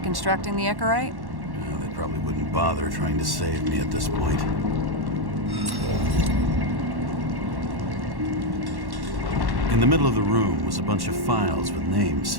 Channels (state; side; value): late; left; 1.1 ms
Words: the Icarite? They probably wouldn't bother trying to save me at this point. In the middle of the room was a bunch of files with